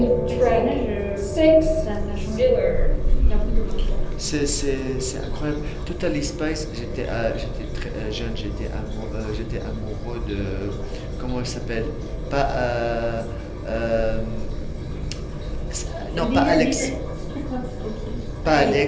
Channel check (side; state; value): both; identical; correlation 1.00